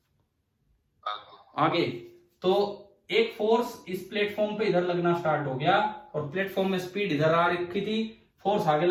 आगे। तो एक फोर्स इस प्लेटफॉर्म पे इधर लगना स्टार्ट हो गया और प्लेटफॉर्म में स्पीड इधर आ रखी थी, फोर्स आगे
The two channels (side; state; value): both; identical; correlation 1.00